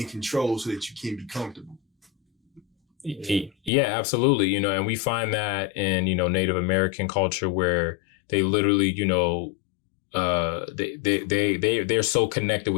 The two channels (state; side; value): drops out; right; at 3.7 s